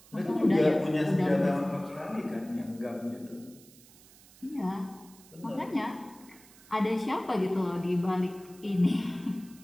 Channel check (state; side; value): noise; right; hiss, 24 dB below the sound